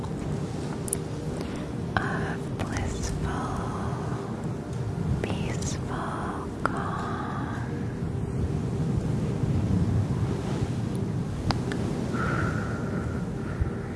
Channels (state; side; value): identical; both; correlation 1.00